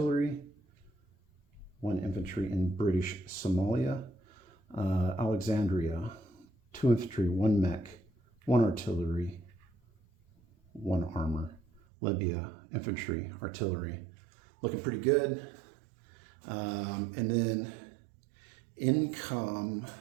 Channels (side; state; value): left; drops out; at 11.8 s